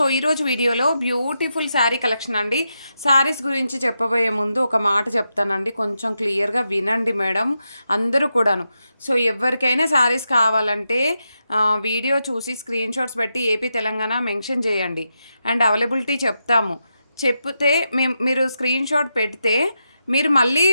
ఈరోజు వీడియోలో బ్యూటిఫుల్ శారీ కలెక్షన్ అండి. శారీస్ గురించి చెప్పబోయే ముందు ఒక మాట చెప్తానండి, కొంచెం క్లియర్గా వినండి మేడం అందరూ కూడాను. సో ఎవరికైనా శారీస్ కావాలంటే వీడియో చూసి స్క్రీన్ షాట్స్ పెట్టి ఏపీ తెలంగాణ మెన్షన్ చేయండి అండ్ అవైలబిలిటీ చెప్తాము. చెప్తే మీరు స్క్రీన్ షాట్ పెడితే మీరు మళ్ళీ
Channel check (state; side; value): inverted; both; correlation -0.86